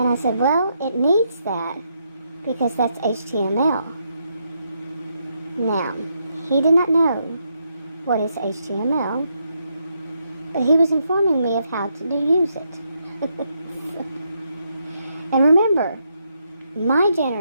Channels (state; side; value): inverted; both; correlation -0.79